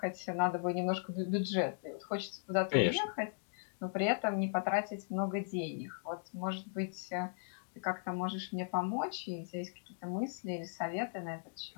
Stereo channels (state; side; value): silent; right; digital silence